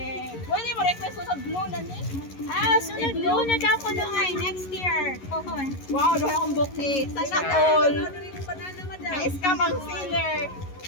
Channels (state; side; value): late; right; 11 ms